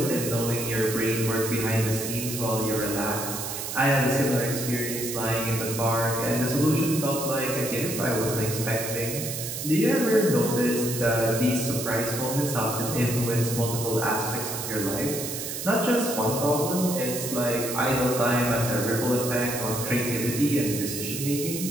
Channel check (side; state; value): right; noise; hiss, 5 dB below the sound